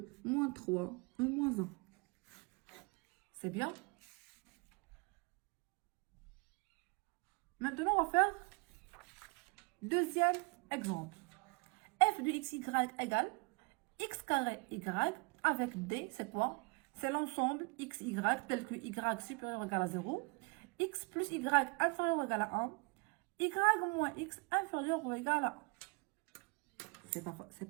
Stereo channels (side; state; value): left; quieter; 28.6 dB